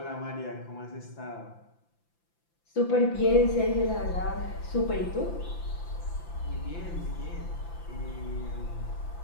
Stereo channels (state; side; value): late; right; 5.9 ms